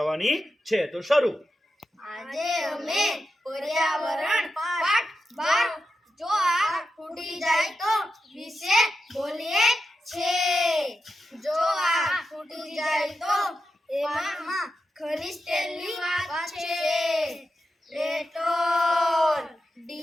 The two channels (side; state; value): both; normal; correlation 0.89